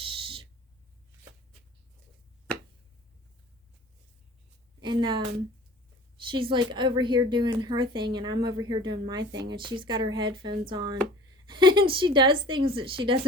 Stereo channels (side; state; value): both; normal; correlation 0.44